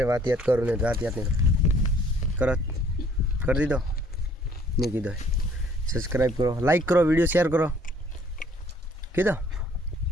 बात याद करो नहीं बात याद नहीं करो कर दी दो नहीं की दो सब्सक्राइब करो लाइक करो वीडियो शेयर करो की दो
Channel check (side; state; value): both; normal; correlation 0.60